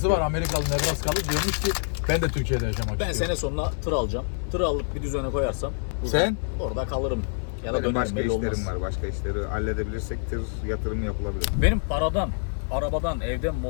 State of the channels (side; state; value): right; silent; digital silence